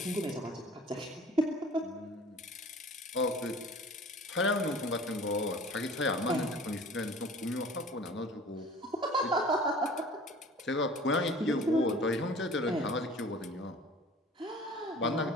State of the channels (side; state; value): both; normal; correlation 0.45